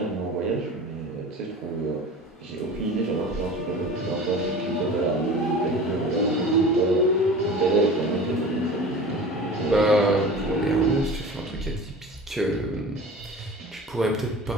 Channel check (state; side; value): normal; both; correlation 0.37